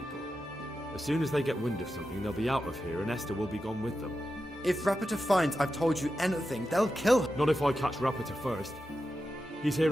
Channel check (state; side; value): normal; both; correlation 0.90